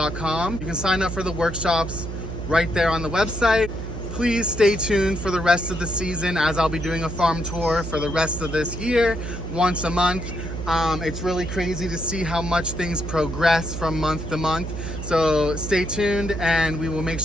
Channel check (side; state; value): right; noise; hum, 6 dB below the sound